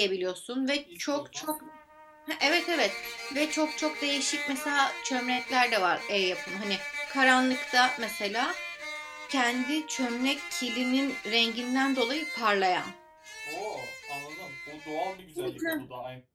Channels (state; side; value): identical; both; correlation 1.00